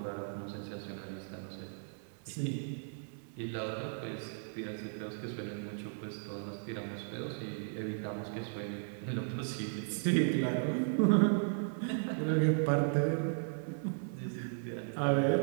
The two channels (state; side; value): silent; left; 54 dB below the other